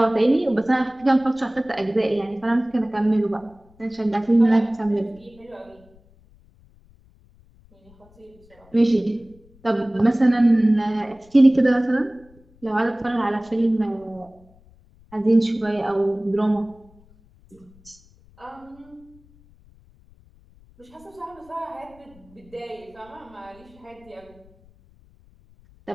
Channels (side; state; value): left; noise; rumble, 28 dB below the sound